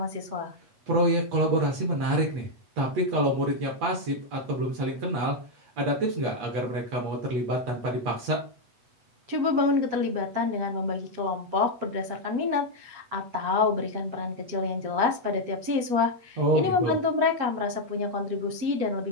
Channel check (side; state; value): left; late; 8.2 ms